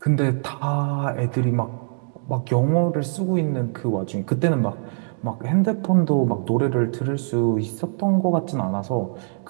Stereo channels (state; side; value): silent; left; 58 dB below the other